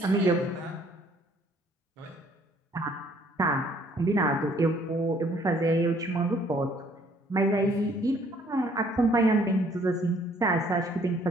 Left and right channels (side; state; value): both; normal; correlation 0.62